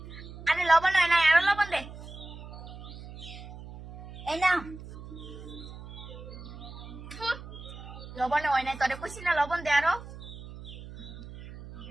আরে লবণ হয় না, আরো লবণ দে। এই নাও লবণ হয় নাই, তোরে কইছি না লবণ দে আরো।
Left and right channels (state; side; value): noise; right; hum, 14 dB below the sound